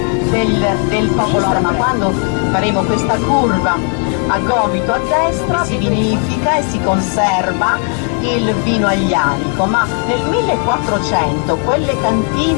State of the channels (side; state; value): right; quieter; 38.8 dB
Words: del popolo, ma quando faremo questa curva a gomito a destra si vinifica e si conserva il vino aglianico, ma nel 1400 quelle